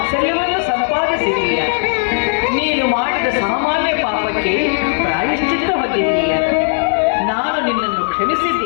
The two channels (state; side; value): silent; right; 64 dB below the other